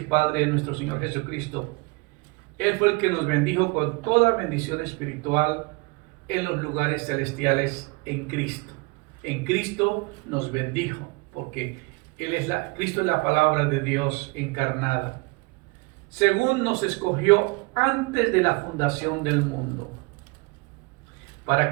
Padre de nuestro Señor Jesucristo. Él fue el que nos bendijo con toda bendición espiritual en los lugares celestiales en Cristo. En Cristo nos bendijo, porque Cristo es la palabra de Dios encarnada. Según nos escogió antes de la fundación del mundo,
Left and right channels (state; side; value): quieter; left; 27.0 dB